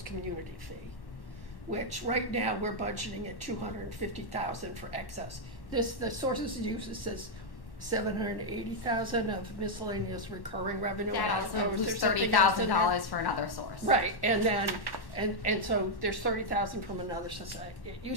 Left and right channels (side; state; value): right; late; 1.1 ms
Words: community fee, which right now we're budgeting at $250,000 for excess. The sources uses says $780,000 of miscellaneous recurring revenue. That also includes $30,000 for another source. Right, and then and so there's $30,000 from another society. It